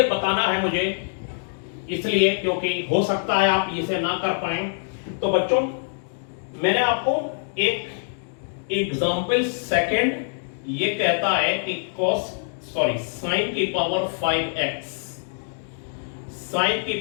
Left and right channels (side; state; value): right; silent; digital silence